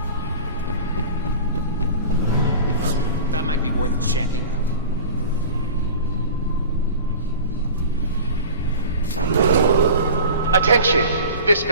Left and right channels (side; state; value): both; inverted; correlation -0.37